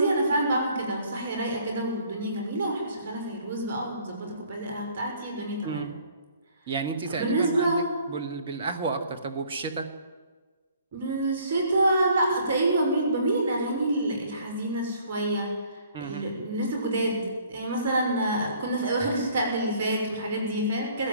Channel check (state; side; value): inverted; both; correlation -0.58